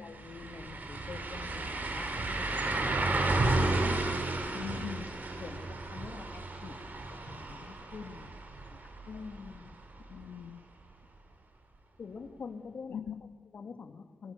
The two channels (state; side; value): normal; both; correlation 0.77